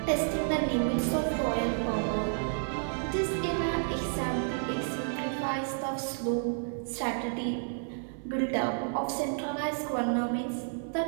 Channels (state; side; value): silent; left; 56 dB below the other